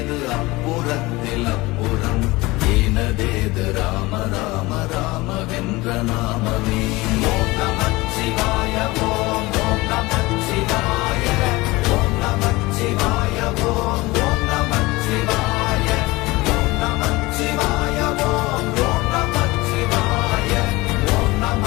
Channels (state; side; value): quieter; right; 21.5 dB